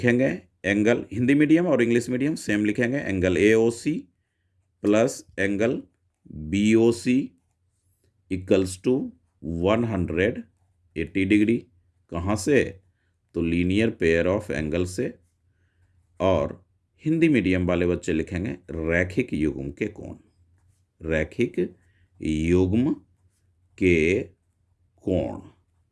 एंगल, हिंदी मीडियम और इंग्लिश मीडियम सेम लिखेंगे, angle AOC plus angle BOC equals to 180 degree. कहाँ से? तो लीनियर पेयर ऑफ एंगल से। और हिंदी मीडियम वाले बच्चे लिखेंगे रैखिक युग्म के कोण, कोण।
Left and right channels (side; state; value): both; identical; correlation 1.00